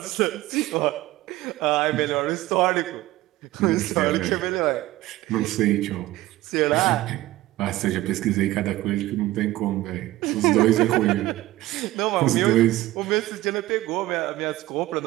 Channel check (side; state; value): left; quieter; 17.0 dB